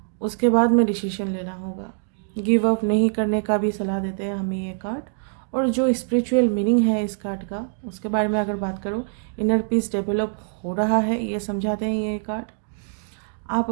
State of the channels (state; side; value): silent; left; 62 dB below the other